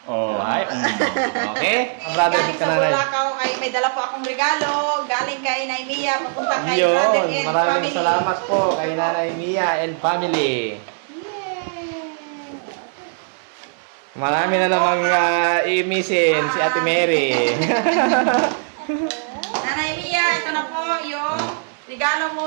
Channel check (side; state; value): left; silent; digital silence